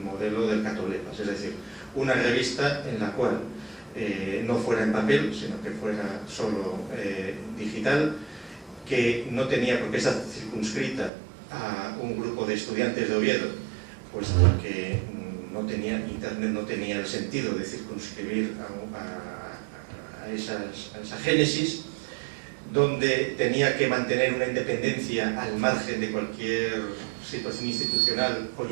modelo del Catoblepas, es decir, una revista en la cual no fuera en papel, sino que fuera solo digital, que no tenía por qué estar circunscrita a un grupo de estudiantes de Oviedo, pues porque no tenía internet, no tenía el sentido de circunscribir a esa génesis, donde tenía que mantener una independencia al margen de cualquier situación institucional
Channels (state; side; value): drops out; left; at 11.1 s